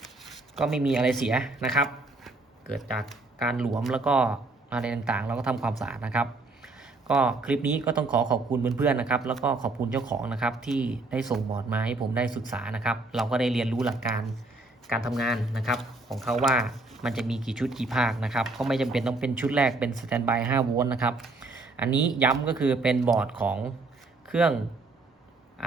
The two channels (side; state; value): left; quieter; 3.3 dB